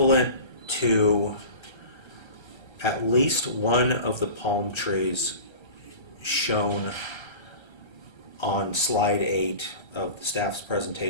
to at least one of the palm trees shown on slide 8 of the staff's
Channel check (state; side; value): late; right; 1.4 ms